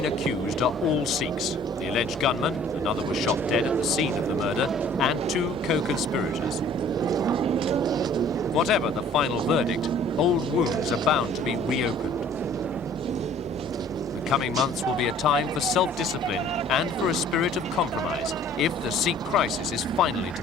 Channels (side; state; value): both; normal; correlation 0.53